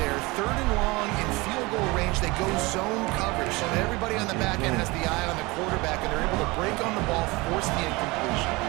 3rd and long in field goal range. They go zone coverage, so that everybody on the back end has the eye on the quarterback, and they're able to break on the ball, force the incompletion.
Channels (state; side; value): quieter; left; 23.6 dB